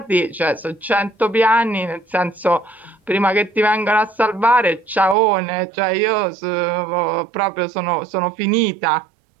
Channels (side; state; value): left; drops out; at 5.2 s